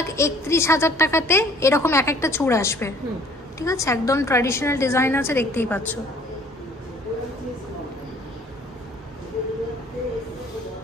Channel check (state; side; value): normal; both; correlation 0.55